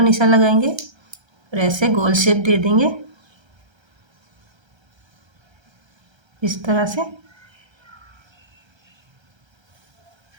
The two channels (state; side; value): late; left; 1.3 ms